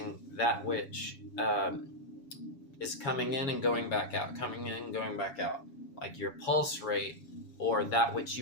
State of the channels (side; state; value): right; late; 7.2 ms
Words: that which is coming in and going back out, coming in and going back out. Like your pulse rate or that which